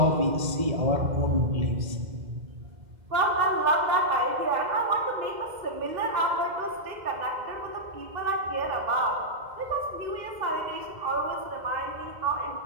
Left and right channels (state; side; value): late; left; 2.0 ms